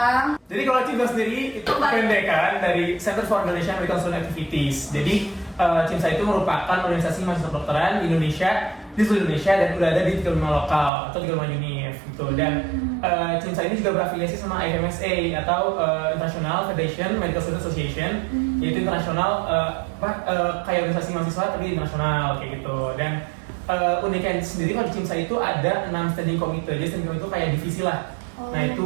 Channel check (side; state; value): left; drops out; at 10.9 s